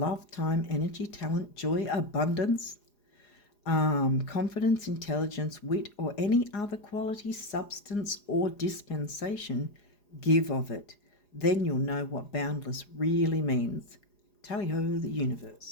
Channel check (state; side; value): late; right; 4.9 ms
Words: time, energy, talent, joy, abundance, confidence, intelligence, wit, or any other quality, substance, or dispensation, give of it. Then you'll know what boundless really means. Tally-ho, the